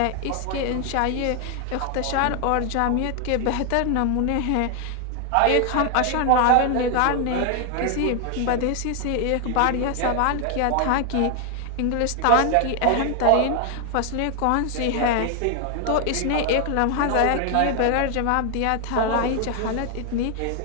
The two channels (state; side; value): different; both; correlation 0.00